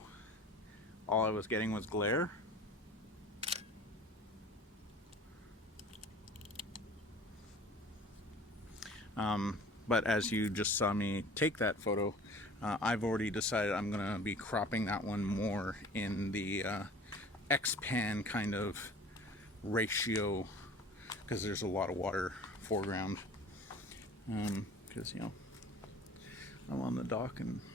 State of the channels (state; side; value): normal; both; correlation 0.45